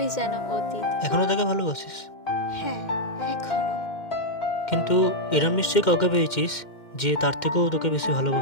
যেন অতীত। এখনো তাকে ভালোবাসিস? হ্যাঁ, এখনো। কিন্তু এরম নিশ্চয়ই কাউকে পেয়েছিস যে তার থেকেও তোকে বেশি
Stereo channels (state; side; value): late; right; 2.1 ms